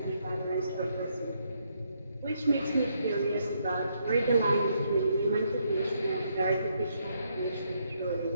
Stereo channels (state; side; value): inverted; both; correlation -0.75